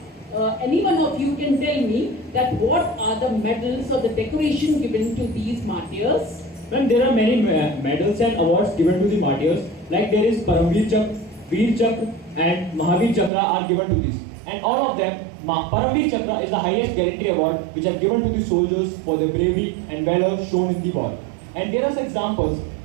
any one of you can tell me that what are the medals or the decoration given to these martyrs? Well, there are many medals and awards given to the martyrs. Like there is Paramveer Chakra, Veer Chakra and Mahavir Chakra are given to this. And all of them, Paramveer Chakra is the highest gallantry award which are given to the soldiers for their bravery and valor shown in the war. And there are examples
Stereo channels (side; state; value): left; drops out; at 13.3 s